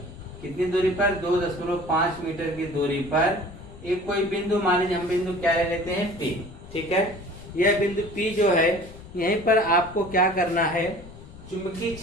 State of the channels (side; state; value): left; noise; rumble, 17 dB below the sound